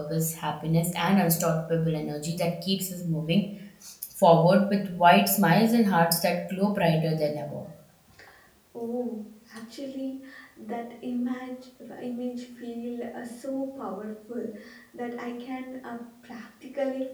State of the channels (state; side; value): identical; both; correlation 1.00